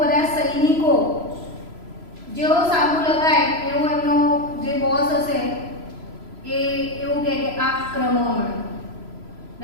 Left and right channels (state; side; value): late; left; 3.0 ms